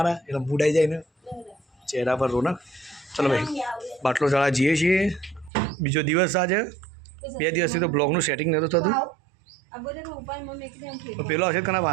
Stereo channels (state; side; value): drops out; left; at 5.5 s